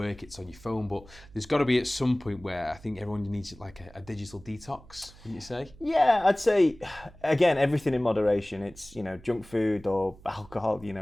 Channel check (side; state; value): right; noise; hum, 22 dB below the sound